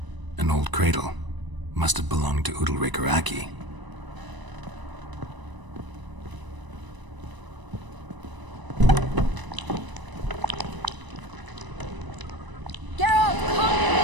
An old cradle. Must have belonged to Udalric or Aki. Geralt, come!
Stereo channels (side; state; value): left; late; 1.0 ms